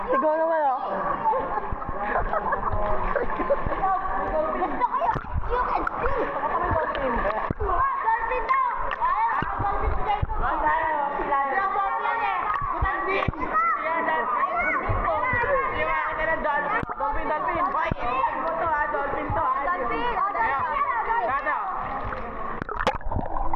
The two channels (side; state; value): both; identical; correlation 1.00